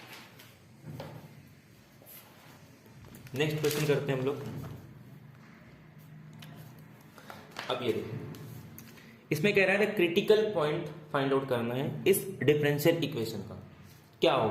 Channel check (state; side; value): identical; both; correlation 1.00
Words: नेक्स्ट क्वेश्चन करते हैं हम लोग। अब ये देखिए, इसमें कह रहा है क्रिटिकल पॉइंट फाइंड आउट करना है इस डिफरेंशियल इक्वेशन का। क्या